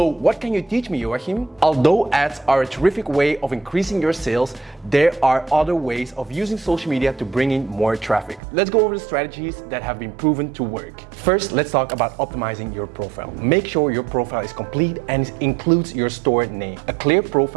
what can you teach me, Joachim? Although ads are a terrific way of increasing your sales, there are other ways of using social media to bring in more traffic. Let's go over the strategies that have been proven to work. First, let's talk about optimizing your profile. Make sure your profile is complete and includes your store name, a clear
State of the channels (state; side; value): drops out; left; at 8.4 s